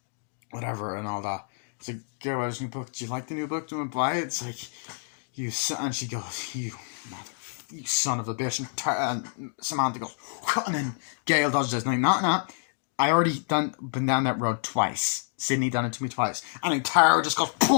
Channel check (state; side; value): silent; right; digital silence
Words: whatever and all that. It's like, Gale Weathers' new book. Do you like the new book? Do you want to buy it? It's like, and she goes, you son of a bitch. And Samantha goes, and then Gale does this. And I'm like, I already been down that road twice. Sydney done it to me twice. And then Tara just goes,